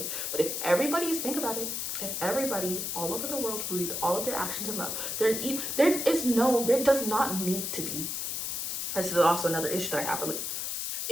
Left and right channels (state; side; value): noise; left; hiss, 2 dB below the sound